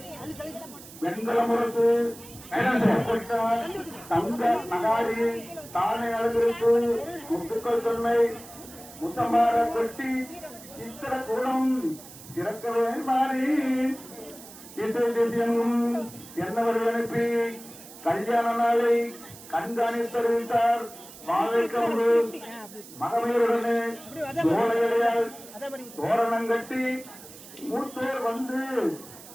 வெண்கல முறுக்கு தங்க நகாரி தானே அழகிருக்கு முத்துக்கள் தொன்மை முத்தம்பார கொட்டி சித்திர கூடம் திறக்கவே மாறி இசை தேசியங்கும் என்னவரை அனுப்பி கல்யாண நாளை கண்காணித்து தெரிவித்தார். மாவேக்கமுடு மகமீருடனே தோழையடையால் தோரணம் கட்டி மூத்தோர் வந்து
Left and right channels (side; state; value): right; noise; hiss, 18 dB below the sound